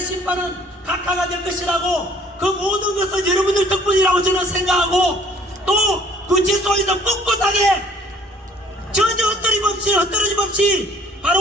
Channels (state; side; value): normal; both; correlation 0.57